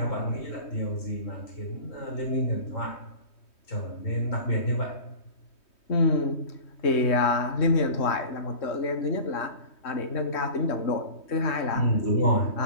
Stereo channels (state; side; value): late; right; 3.2 ms